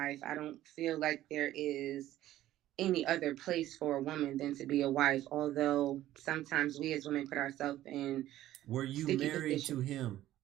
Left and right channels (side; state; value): left; quieter; 13.9 dB